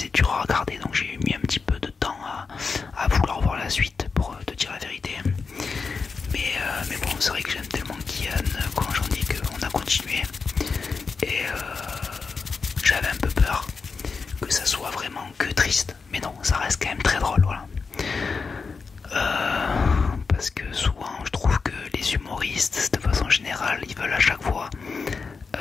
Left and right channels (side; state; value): right; quieter; 4.9 dB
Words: dur à regarder, donc j'ai mis un petit peu de temps à vouloir voir la suite, pour te dire la vérité. Mais bon, c'est vrai que j'aime tellement Kian quand j'en dis qu'on a continué, et j'avais un peu peur que ça soit vraiment que triste, mais non, ça reste quand même très drôle, voilà.